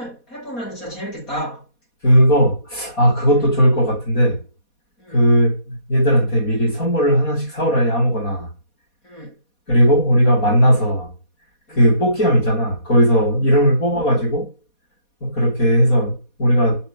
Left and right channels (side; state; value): right; late; 4.2 ms